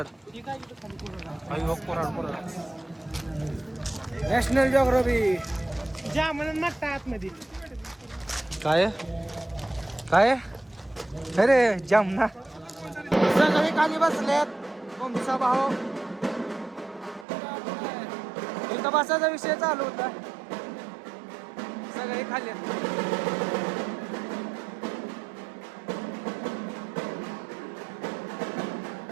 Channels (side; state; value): left; drops out; at 17.2 s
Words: नॅशनल जॉग्राफी आतमध्ये काय अरे जामना. सगळे खाली बसलेत. कोंबडीचा भाऊ इथं बसायचा विषय चालू होता. सगळे खाली